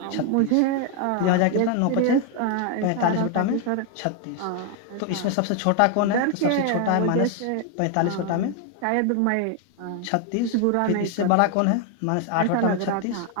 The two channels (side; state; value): both; different; correlation 0.00